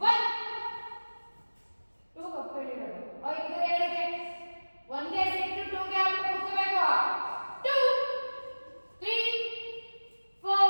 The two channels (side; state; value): both; inverted; correlation -1.00